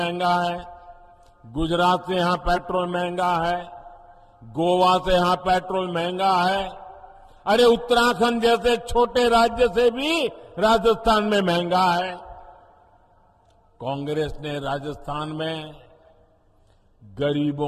है, गुजरात से यहां पेट्रोल महंगा है, गोवा से यहां पेट्रोल महंगा है। अरे उत्तराखंड जैसे छोटे राज्य से भी राजस्थान में महंगा है। कांग्रेस ने राजस्थान में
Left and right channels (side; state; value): both; identical; correlation 1.00